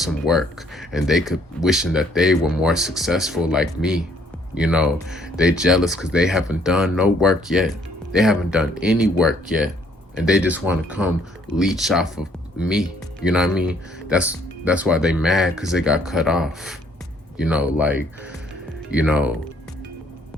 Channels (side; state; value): both; normal; correlation 0.64